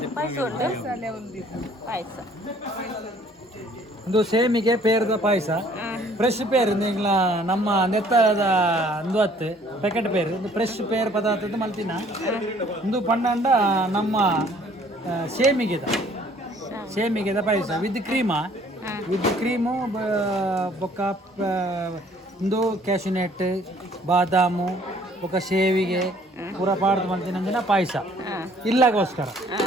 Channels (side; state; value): both; normal; correlation 0.58